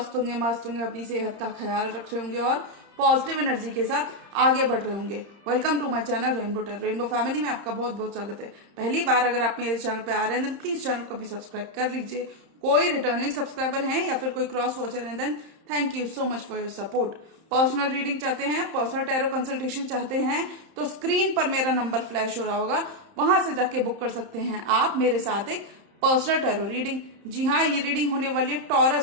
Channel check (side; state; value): left; late; 31 ms